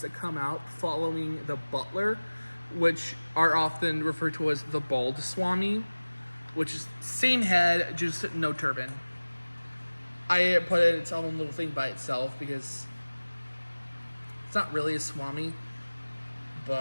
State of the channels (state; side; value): inverted; both; correlation -1.00